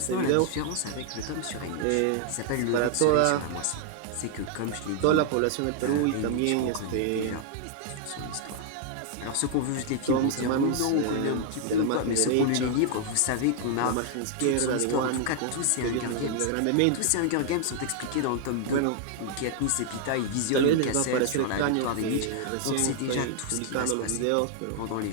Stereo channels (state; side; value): different; both; correlation 0.00